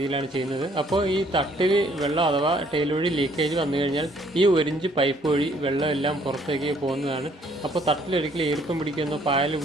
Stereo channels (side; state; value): both; normal; correlation 0.63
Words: ചെയ്യുന്നത്. അപ്പോൾ ഈ തട്ടിൽ വെള്ളം അഥവാ ടൈൽ വഴി ലീക്കേജ് വന്നു കഴിഞ്ഞാൽ ഈ 1 ഇഞ്ച് പൈപ്പ് വഴി വെള്ളം എല്ലാം പുറത്തേക്ക് പോകുന്നതാണ്. അപ്പോൾ തട്ടിലൊരിക്കലും ഈർപ്പം പിടിക്കുമെന്നോ പായൽ